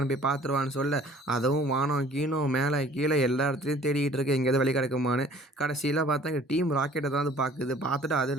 போய் பார்த்துருவான்னு சொல்ல, அதுவும் வானம் கீனம் மேலே கீழே எல்லா இடத்துலையும் தேடிக்கிட்டு இருக்கு எங்கேயாவது வழி கிடைக்குமான்னு. கடைசியில் பார்த்தா எங்கள் டீம் ராக்கெட்டை தான் அது பார்த்துட்டு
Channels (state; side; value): normal; both; correlation 0.52